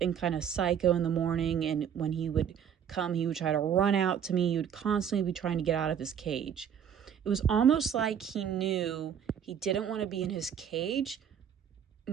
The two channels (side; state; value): left; quieter; 8.5 dB